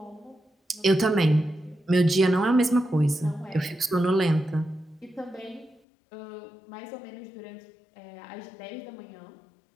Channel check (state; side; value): drops out; right; at 5.8 s